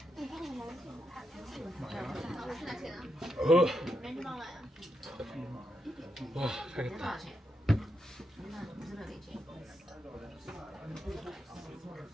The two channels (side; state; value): both; normal; correlation 0.83